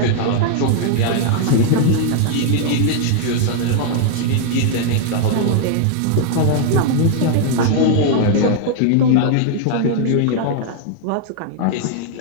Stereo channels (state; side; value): different; both; correlation 0.00